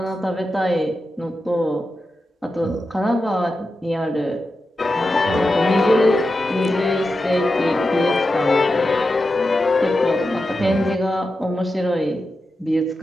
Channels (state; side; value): normal; both; correlation 0.90